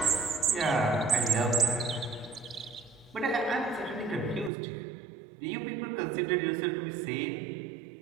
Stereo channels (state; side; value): drops out; left; at 4.5 s